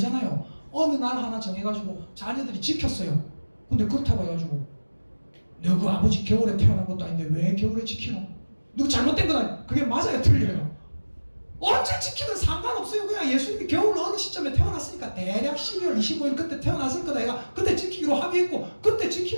어느 날 하나 정해가지고 자녀들이 지켰어요. 근데 그렇다고 해가지고 너그 아버지 겨울에 태어난 것도 아닌데 왜 겨울에 지키노? 누구 잘못된 건 아니에요. 그게 맞아요? 틀려요? 언제 지키든 상관없어요. 그냥 예수님이 겨울 어느 시점에 태어났으니까 대략 12월 25일 그때 태어났을 거다. 얘가 그때 지키기로 합의했고 그때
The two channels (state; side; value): inverted; both; correlation -1.00